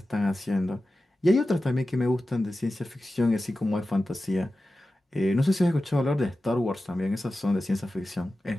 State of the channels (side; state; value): both; normal; correlation 0.94